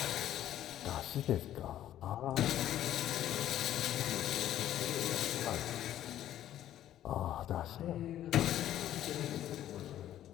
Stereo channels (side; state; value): right; quieter; 12.1 dB